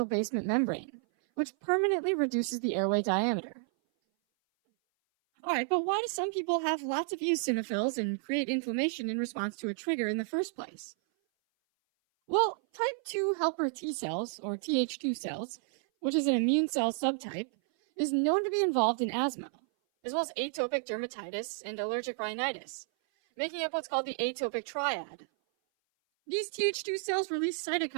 basement membrane, which permanently reduces the airway diameter. Alright, but why do some people have lots of eosinophils and create inflammation in response to a trigger in the first place? Well, type 2 helper T cells, or Th2 cells, which is an immune cell subtype, is known to be involved in asthma, as well as atopic dermatitis and allergic rhinitis, making up what's called the atopic triad. These Th2 cells release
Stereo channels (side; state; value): left; silent; 56 dB below the other